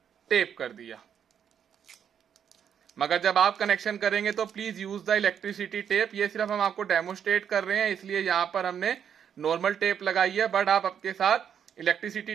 टेप कर दिया। मगर जब आप कनेक्शन करेंगे तो please use the electricity tape. ये सिर्फ हम आपको डेमोस्ट्रेट कर रहे हैं, इसलिए यहां पर हमने नॉर्मल टेप लगाई है, बट आप आपके साथ इलेक्ट्रिसिटी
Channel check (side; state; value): left; quieter; 8.3 dB